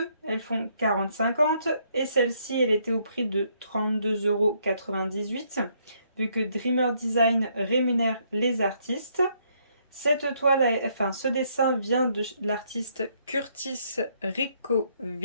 elles font 40,50. Et celle-ci, elle était au prix de 32,98 € vu que Dreamer Design rémunère les artistes. Cette toile, enfin ce dessin vient de l'artiste Curtis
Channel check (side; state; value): both; inverted; correlation -0.70